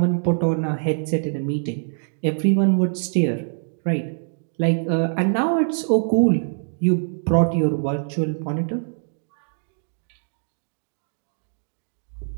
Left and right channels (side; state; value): left; silent; digital silence